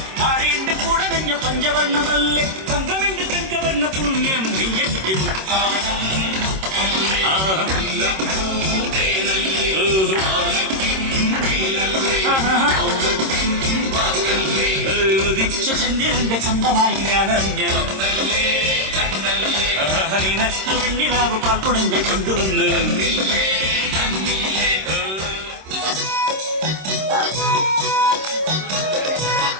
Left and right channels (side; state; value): left; late; 26 ms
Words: താഴേന്റെ കൂടെ നഞ്ഞ പഞ്ചവർണ്ണമല്ലേ തങ്കമെന്റെ തങ്കവർണ്ണ പുണ്യം നീയക്ക് ചന്ദ്രന്റെ സ്വന്തമായി ഞാൻ അറിഞ്ഞു നിനക്ക് വെണ്ണിലാവ് പാൽക്കുടങ്ങൾ കൊണ്ടുവന്ന്